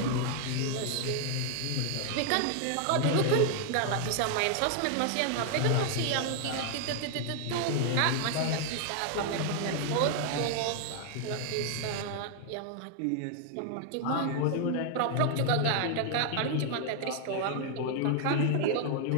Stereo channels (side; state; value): both; different; correlation 0.00